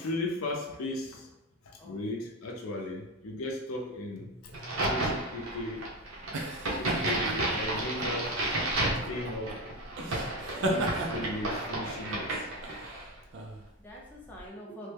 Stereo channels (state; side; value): normal; both; correlation 0.17